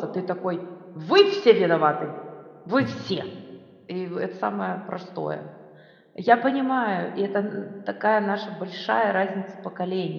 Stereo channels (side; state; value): both; identical; correlation 1.00